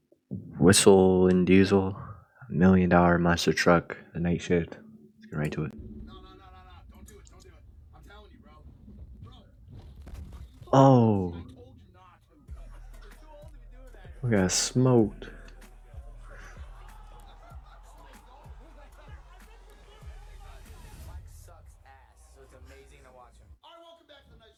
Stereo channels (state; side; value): identical; both; correlation 1.00